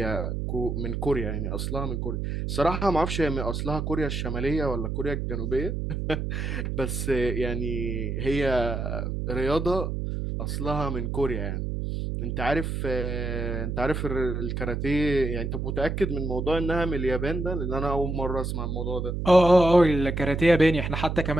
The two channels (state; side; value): noise; right; hum, 2 dB below the sound